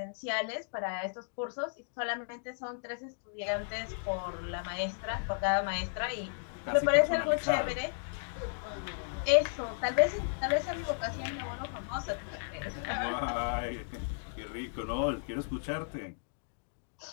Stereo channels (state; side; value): silent; right; digital silence